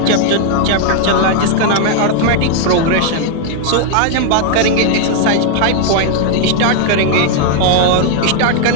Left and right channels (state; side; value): different; both; correlation 0.00